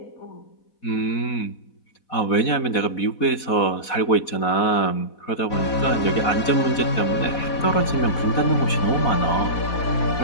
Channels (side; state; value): right; late; 4.1 ms